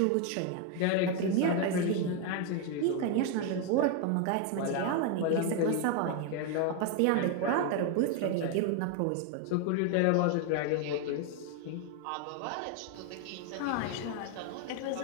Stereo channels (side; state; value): both; different; correlation 0.01